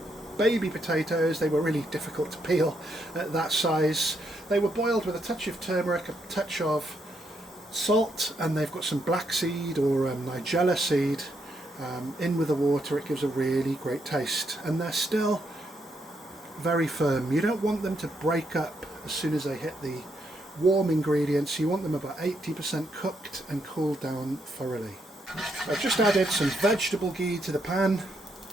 baby potatoes. They were really difficult to peel at that size. They were boiled with a touch of turmeric, a touch of salt, and they've got some black seed or nigella seed in with the water. It gives a really great taste, and they're still very firm. You don't want them to break up as soon as they hit the warm ingredients. You want them about 80% cooked and cooled down thoroughly. I've just added some vegetable ghee to the pan.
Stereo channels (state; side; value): normal; both; correlation 0.77